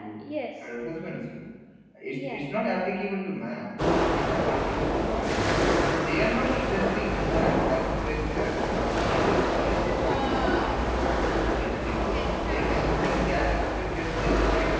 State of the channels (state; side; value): identical; both; correlation 1.00